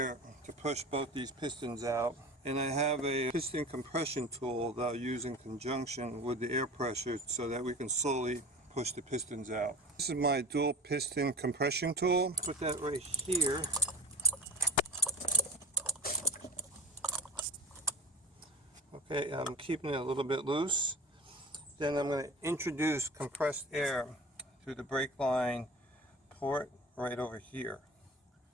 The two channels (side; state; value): both; normal; correlation 0.34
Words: to push both these pistons out. And I have a piston compression tool that I'll use in conjunction with the air pressure so that we can slowly push the pistons out. This is my dual piston compression tool. Put that right here. Okay, I'm keeping it a little bit loose. Then I'm going to introduce compressed air through the brake line port right over here.